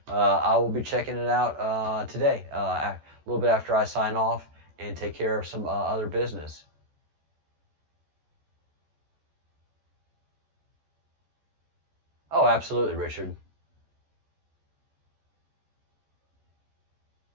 I will be checking it out today, a little bit after I sign off and take care of some other business. Oh, absolutely, Richard.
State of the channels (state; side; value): late; left; 13 ms